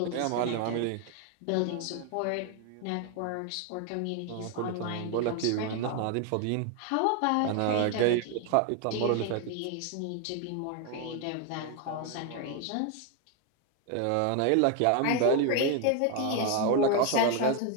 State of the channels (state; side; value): different; both; correlation 0.01